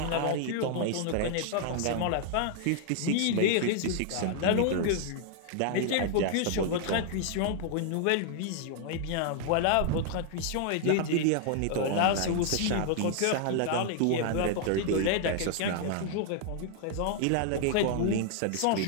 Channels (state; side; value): different; both; correlation 0.00